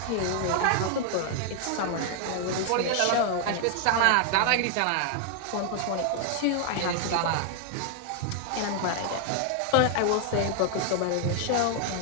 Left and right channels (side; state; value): both; different; correlation 0.00